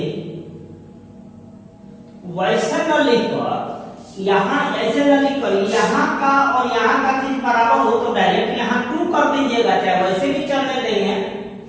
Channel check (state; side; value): identical; both; correlation 1.00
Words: वैसे न लिखकर यहाँ ऐसे न लिखकर यहाँ का और यहाँ का चीज बराबर हो तो डायरेक्ट यहाँ 2 कर दीजिएगा, चाहे वैसे भी चलने देंगे।